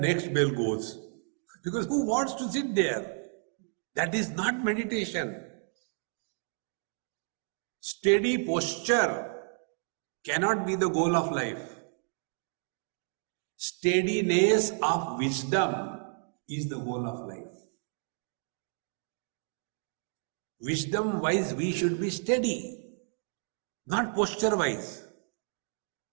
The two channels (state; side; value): silent; left; 57 dB below the other